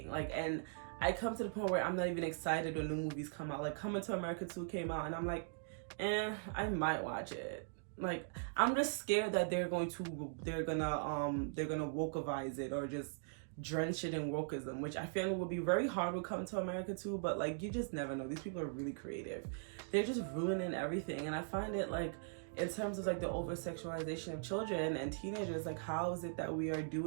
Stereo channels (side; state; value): left; silent; digital silence